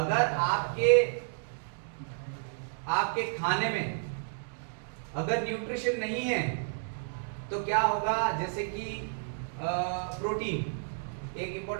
आपके खाने में अगर न्यूट्रिशन नहीं है तो क्या होगा? जैसे कि प्रोटीन एक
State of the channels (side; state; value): left; silent; digital silence